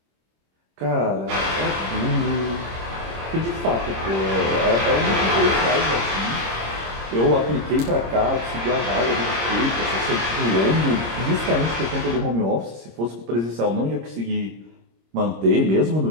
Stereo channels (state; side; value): late; left; 26 ms